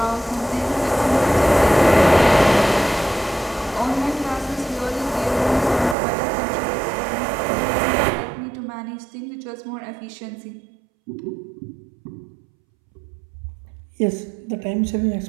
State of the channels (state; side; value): drops out; left; at 6.0 s